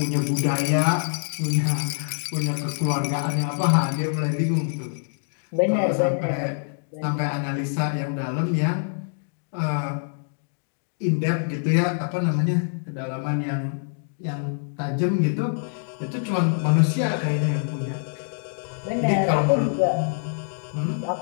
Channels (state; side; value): silent; right; digital silence